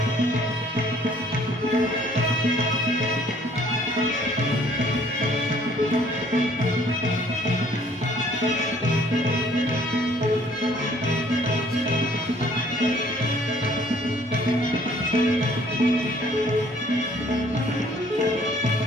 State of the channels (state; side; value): normal; both; correlation 0.59